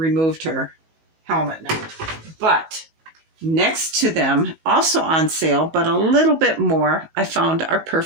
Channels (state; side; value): late; left; 19 ms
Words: her helmet now. But next to them, also on sale, but a little bit more, I found our